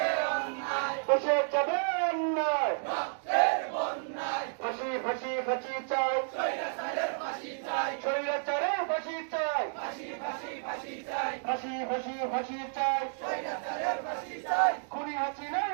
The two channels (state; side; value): silent; left; digital silence